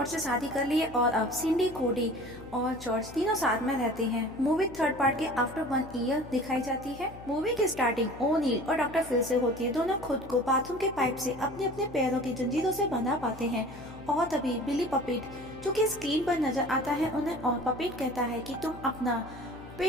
से शादी कर ली है और अब सिंडी, कोडी और जॉर्ज तीनों साथ में रहते हैं। मूवी थर्ड पार्ट के आफ्टर 1 ईयर दिखाई जाती है। मूवी की स्टार्टिंग ओनील और डॉक्टर फिल से होती है। दोनों खुद को बाथरूम के पाइप से अपने अपने पैरों की जंजीरों से बंधा पाते हैं और तभी बिली पपेट जो कि स्क्रीन पर नजर आता है उन्हें, और पपेट कहता है कि तुम अपना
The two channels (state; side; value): noise; left; hum, 17 dB below the sound